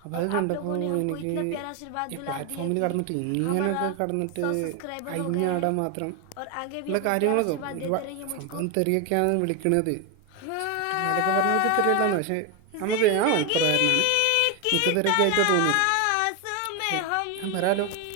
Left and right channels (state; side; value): different; both; correlation 0.01